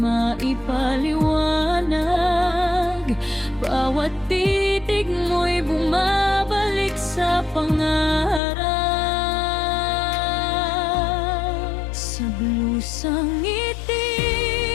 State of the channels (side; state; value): right; drops out; at 8.4 s